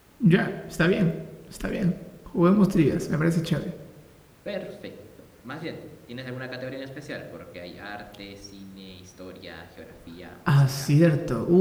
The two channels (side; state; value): both; identical; correlation 1.00